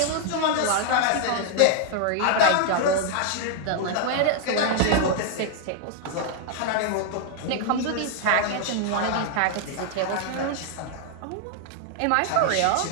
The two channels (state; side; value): different; both; correlation 0.00